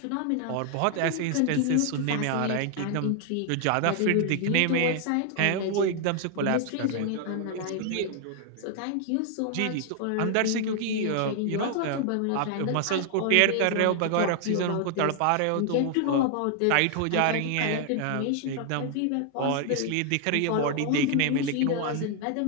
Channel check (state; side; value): different; both; correlation 0.00